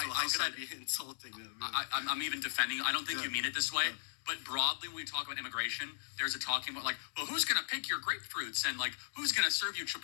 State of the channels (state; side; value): silent; right; 53 dB below the other